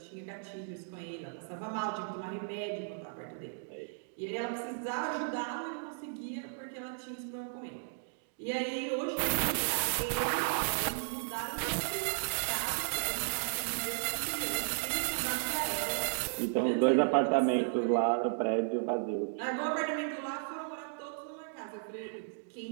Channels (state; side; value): silent; left; digital silence